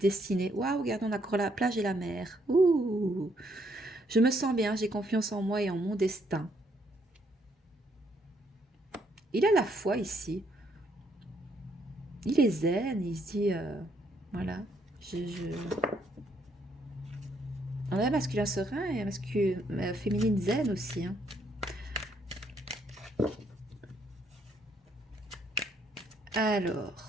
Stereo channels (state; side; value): normal; both; correlation 0.71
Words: destinée. Waouh, regarde, on a encore la plage et la mer. Ouh, je me sens bien, j'ai confiance en moi et en mon destin. Il a la foi ici. Il est zen, il se dit, voilà, on a un masculin serein et un masculin féminine zen aussi. Hein. Alors,